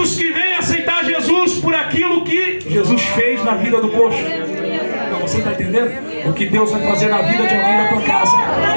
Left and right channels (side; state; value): both; inverted; correlation -1.00